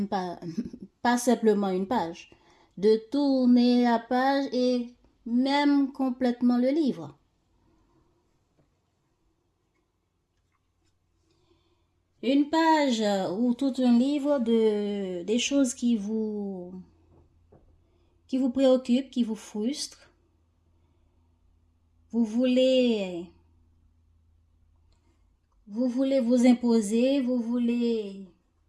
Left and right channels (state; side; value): identical; both; correlation 1.00